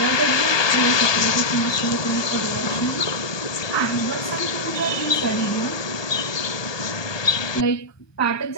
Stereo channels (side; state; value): right; late; 1.2 ms